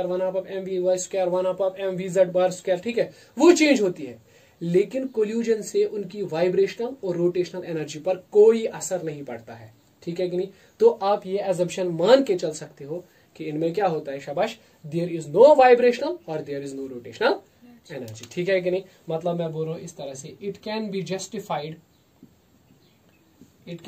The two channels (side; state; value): both; identical; correlation 1.00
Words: 1/2 mvy², 1/2 mvz², ठीक है, वो चेंज होती है। लेकिन कोल्यूजन से उनकी वाइब्रेशनल और रोटेशनल एनर्जी पर कोई असर नहीं पड़ता है, ठीक है कि नहीं। तो आप ये एजम्पशन मान के चल सकते हो कि इनमें क्या होता है, शाबाश, देयर इज नो वाइब्रेशनल और there is no rotational energy, ठीक है कि नहीं। मतलब मैं बोल रहा हूं इस तरह से, it can